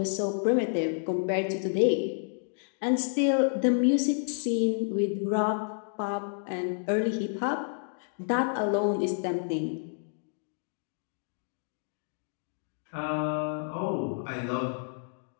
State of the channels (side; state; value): right; silent; digital silence